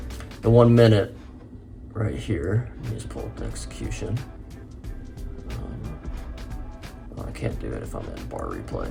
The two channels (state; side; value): identical; both; correlation 1.00